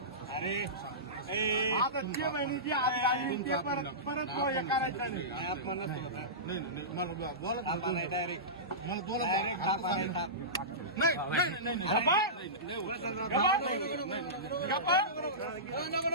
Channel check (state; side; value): normal; both; correlation -0.19